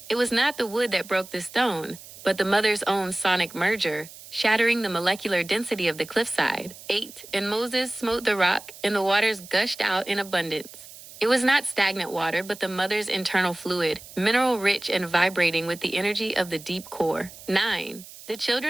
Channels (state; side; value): noise; right; hiss, 17 dB below the sound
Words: It was not the wood that broke the stone, but the Mother's own sonic merger, shattering the molecular density of the cliffside. 8 And Moses smote the rock, and the waters gushed out in abundance. It was not stagnant water, but the mother's internal fluid, mineral-rich and vibrating with the energy of the deep core. 9. The